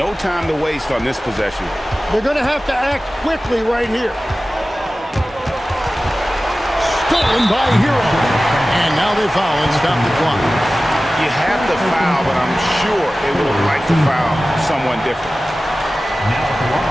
time to waste on this possession. They're going to have to act quickly right here. Stolen by Hero. And now they foul and stop the clock. You have to foul, but I'm sure they would have liked to foul someone different. Now at the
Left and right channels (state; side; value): normal; both; correlation 0.96